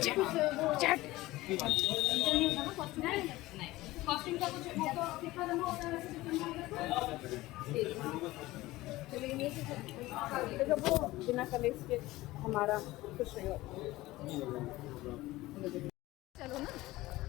कॉस्टिंग का कुछ वो बिना कलेक्स के हमारा कुछ नहीं होता। चलो ना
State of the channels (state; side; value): quieter; right; 18.4 dB